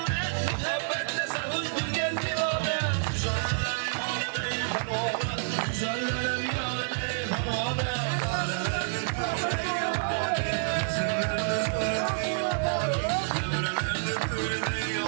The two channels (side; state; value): left; silent; digital silence